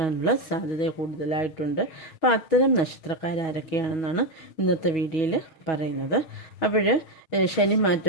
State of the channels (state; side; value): late; right; 6.3 ms